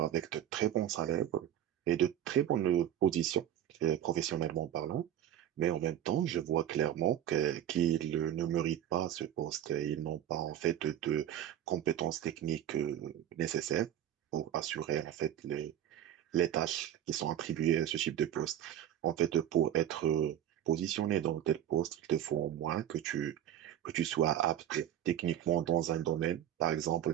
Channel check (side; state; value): left; quieter; 11.1 dB